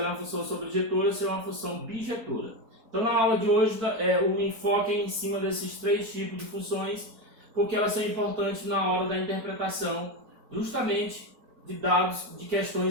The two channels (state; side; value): late; left; 4.5 ms